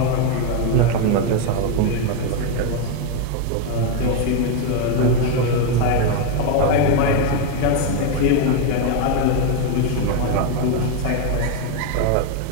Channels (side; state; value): both; different; correlation 0.01